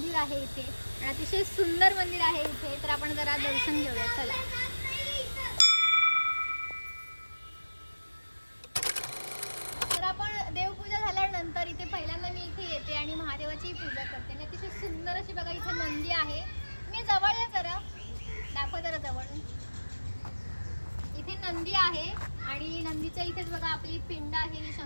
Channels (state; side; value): inverted; both; correlation -1.00